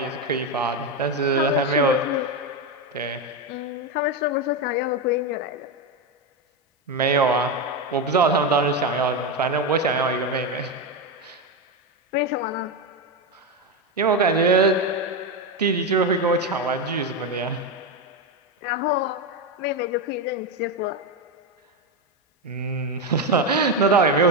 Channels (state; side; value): normal; both; correlation 0.11